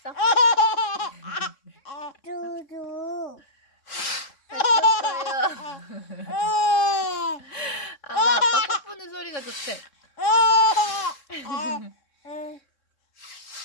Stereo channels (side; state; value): right; late; 3.6 ms